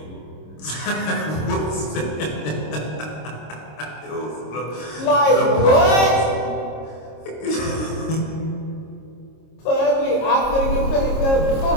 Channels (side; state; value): right; late; 26 ms